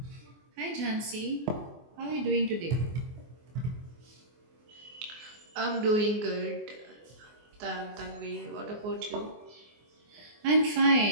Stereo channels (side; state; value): left; late; 24 ms